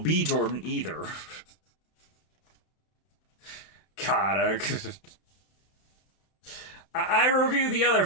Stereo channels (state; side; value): late; right; 32 ms